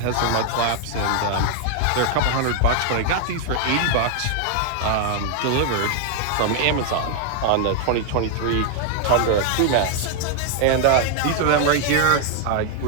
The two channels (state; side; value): different; both; correlation 0.00